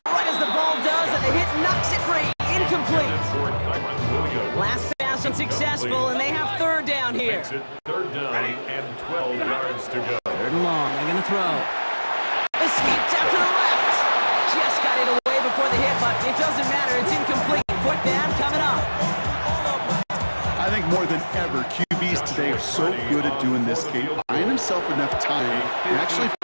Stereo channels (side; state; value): both; inverted; correlation -1.00